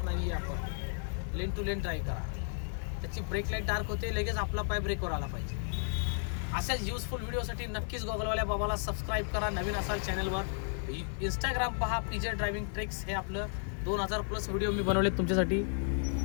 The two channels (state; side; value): silent; right; 55 dB below the other